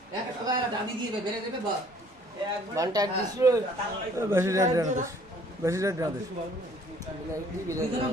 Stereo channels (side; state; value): both; normal; correlation 0.58